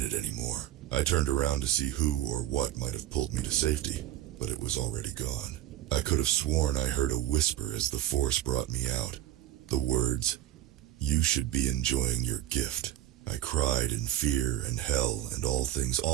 anymore. I turned around to see who or what might have pulled me to safety, but it was already gone. I could have sworn I heard a whisper as the force brought me out. The words, "You should be enjoying your gift." I cried in fear and hell and all things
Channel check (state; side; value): quieter; left; 13.3 dB